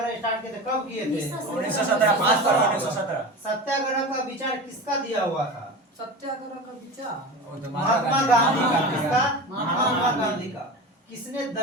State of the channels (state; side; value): normal; both; correlation 0.30